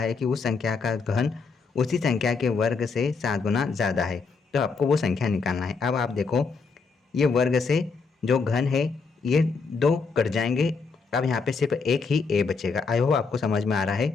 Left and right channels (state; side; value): quieter; right; 4.8 dB